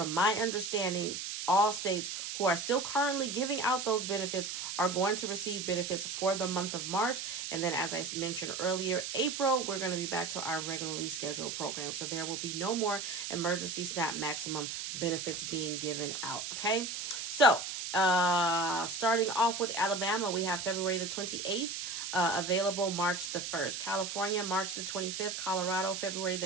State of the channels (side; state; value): right; noise; hiss, 5 dB below the sound